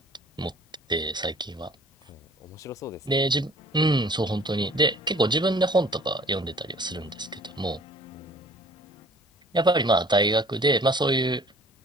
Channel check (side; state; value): both; normal; correlation 0.52